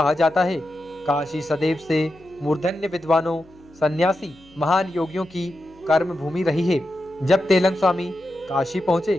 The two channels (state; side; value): noise; left; hum, 27 dB below the sound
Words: जाता है। काशी सदैव से मूर्धन्य विद्वानों, सन्यासी, महान योगियों की कर्म भूमि रही है। जब त्रैलंग स्वामी काशी पहुंचे,